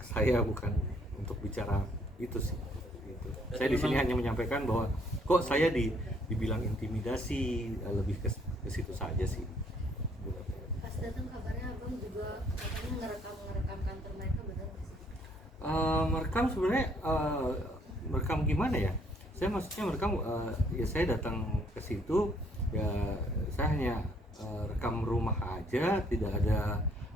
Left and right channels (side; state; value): both; normal; correlation 0.65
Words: saya, bukan untuk bicara itu sih gitu. Saya di sini hanya menyampaikan bahwa kok saya dibilang intimidasi, lebih ke situ saja sih. Pas datang kabarnya abang juga katanya ngerekam kantor mereka, benar nggak sih? Merekam sebenarnya merekam gimana ya? Saya maksudnya merekam ya saya datang ke situ ya saya hanya rekam rumah aja, tidak ada